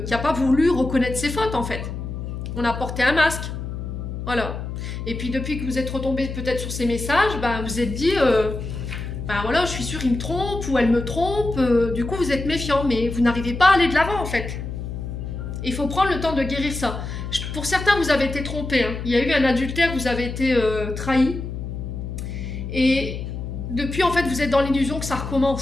qui n'a pas voulu reconnaître ses fautes, en fait. On a porté un masque. Voilà. Et puis, depuis que vous êtes retombé peut-être sur ces messages, ben, vous êtes dit, ben voilà, je suis sûre, il me trompe ou elle me trompe. Du coup, vous êtes méfiant, mais vous n'arrivez pas à aller de l'avant, en fait. Il faut prendre le temps de guérir ça. Pour certains, vous avez été trompé. Hein. Il y a eu un adultère, vous avez été trahi. Et depuis, en fait, vous êtes dans l'illusion que ça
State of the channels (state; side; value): noise; left; hum, 6 dB below the sound